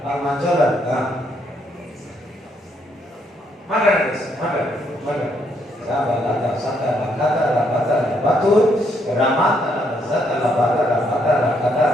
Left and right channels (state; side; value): normal; both; correlation 0.73